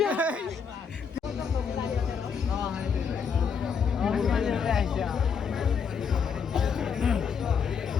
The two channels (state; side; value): quieter; right; 6.4 dB